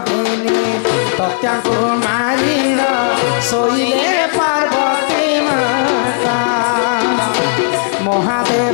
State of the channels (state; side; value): silent; right; digital silence